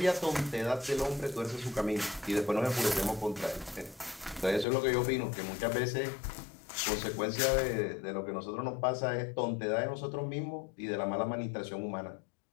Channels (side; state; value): right; drops out; at 4.7 s